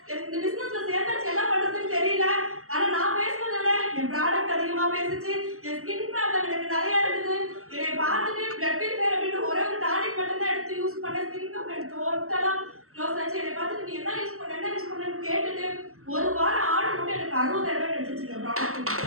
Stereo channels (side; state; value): left; late; 0.63 ms